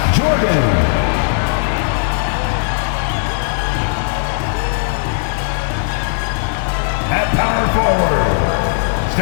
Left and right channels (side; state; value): right; silent; digital silence